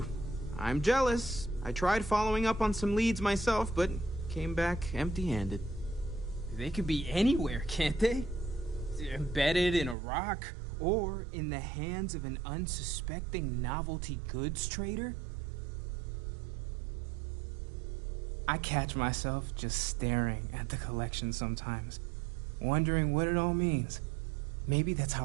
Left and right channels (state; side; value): drops out; left; at 10.0 s